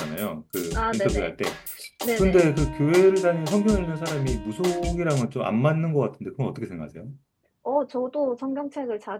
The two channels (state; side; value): identical; both; correlation 1.00